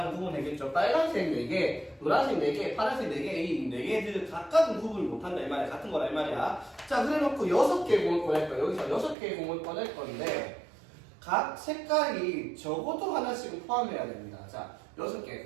구분되겠죠. 빨간색 4개, 노란색 4개, 파란색 4개, 이 4개들 각각은 구분을 못한다 이 말이야. 같은 거라 이 말이야. 자, 그래놓고 6개의 공을 꺼낼 거야. 여기서 6개의 공을 꺼낼 건데 각 색깔이 적어도 하나씩은 포함해야 됩니다. 자, 6개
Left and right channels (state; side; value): drops out; left; at 9.2 s